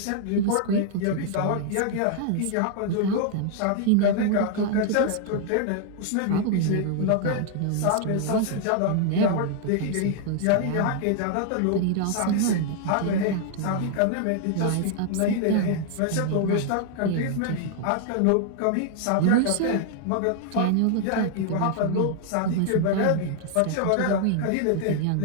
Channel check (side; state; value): both; different; correlation 0.00